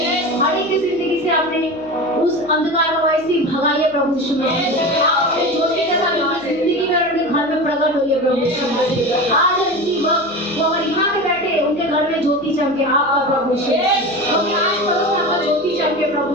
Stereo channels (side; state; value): left; noise; hum, 27 dB below the sound